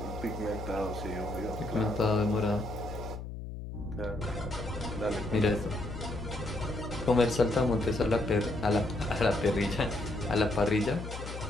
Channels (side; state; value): left; noise; hum, 8 dB below the sound